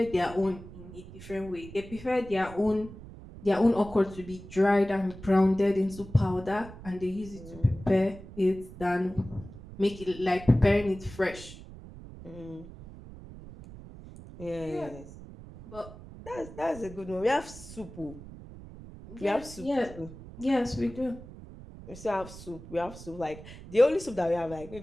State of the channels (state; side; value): noise; right; rumble, 15 dB below the sound